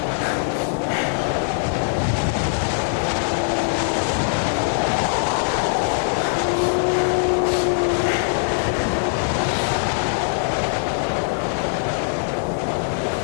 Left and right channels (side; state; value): right; silent; digital silence